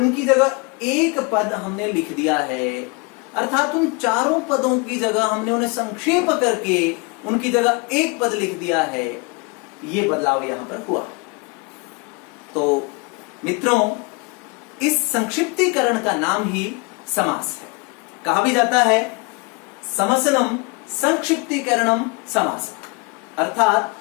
जगह एक पद हमने लिख दिया है। अर्थात उन चारों पदों की जगह हमने उन्हें संक्षेप करके उनकी जगह एक पद लिख दिया है। ये बदलाव यहां पर हुआ। तो मित्रों, इस संक्षिप्तीकरण का नाम ही समास है। कहा भी जाता है समसनम संक्षिप्तीकरणम समास, अर्थात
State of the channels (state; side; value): quieter; right; 29.9 dB